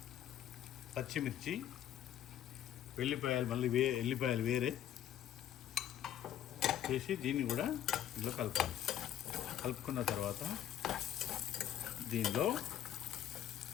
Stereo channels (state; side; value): quieter; right; 11.1 dB